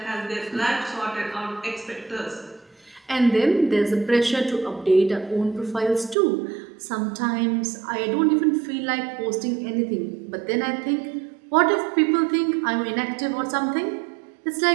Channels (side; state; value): left; drops out; at 6.2 s